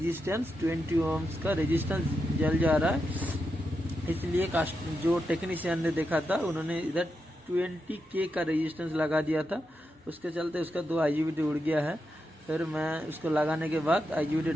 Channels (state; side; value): normal; both; correlation 0.86